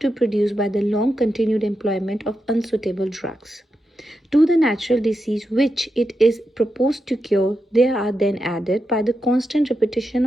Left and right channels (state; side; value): normal; both; correlation 0.87